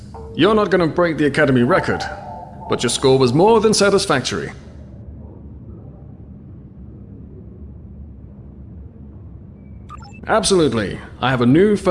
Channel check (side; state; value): both; identical; correlation 1.00